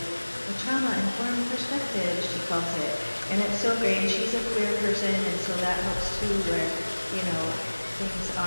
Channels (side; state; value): both; inverted; correlation -1.00